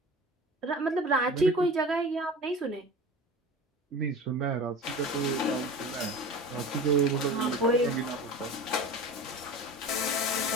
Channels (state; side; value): normal; both; correlation 0.36